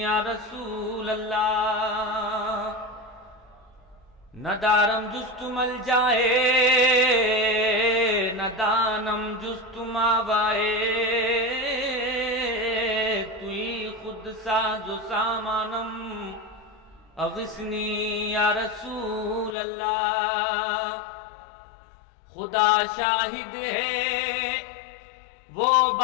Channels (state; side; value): drops out; right; at 19.6 s